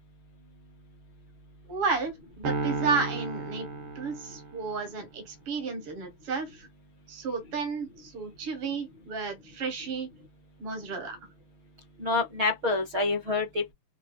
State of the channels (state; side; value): late; left; 6.4 ms